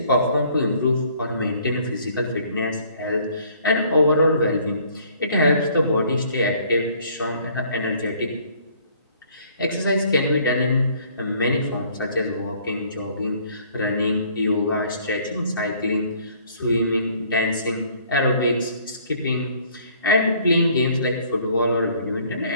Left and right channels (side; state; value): both; inverted; correlation -0.59